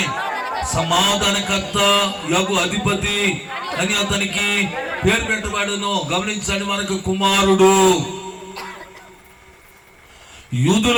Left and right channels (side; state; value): both; identical; correlation 1.00